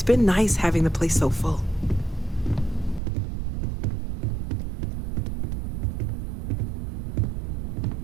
been nice having the place so full.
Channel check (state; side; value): drops out; left; at 3.0 s